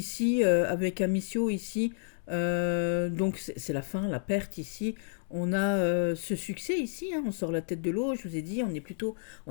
avec Amicio, ici, donc c'est la fin, la perte ici. On a ce succès ici, hein, on sort la tête de l'eau, je vous ai dit, on est plutôt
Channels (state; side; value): silent; right; digital silence